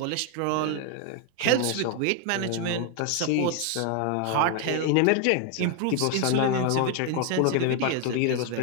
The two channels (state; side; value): different; both; correlation 0.01